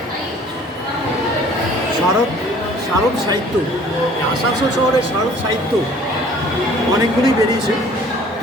শারদ শারদ সাহিত্য, আসানসোল শহরের শারদ সাহিত্য অনেকগুলি বেরিয়েছে,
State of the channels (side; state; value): both; normal; correlation 0.53